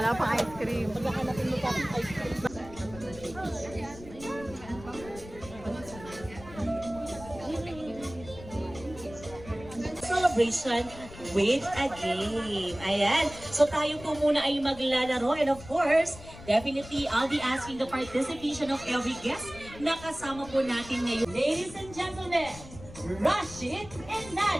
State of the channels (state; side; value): noise; left; rumble, 16 dB below the sound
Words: pang ice cream. Maghahanapin mo pa ng ice cream. Celebration with a game. Ayan. So tayo po muna ay maglalaro. And of course, definitely, I'll be asking the participation of every guest na kasama po natin ngayon. Ladies and gentlemen, Rashid and